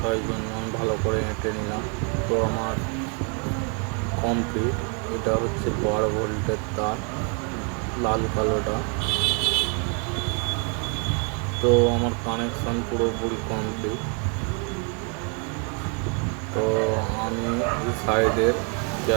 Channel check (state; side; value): quieter; left; 37.5 dB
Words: তাই জন্য আমি ভালো করে এঁটে নিলাম। তো আমার কমপ্লিট। এটা হচ্ছে 12 ভোল্টের তার, লাল কালোটা। তো আমার কানেকশান পুরোপুরি কমপ্লিট। তো আমি এই সাইডের